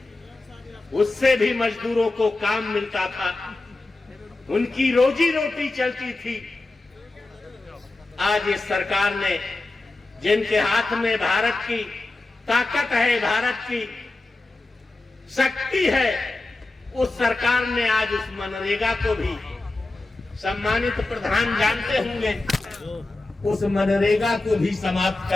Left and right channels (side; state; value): right; quieter; 3.1 dB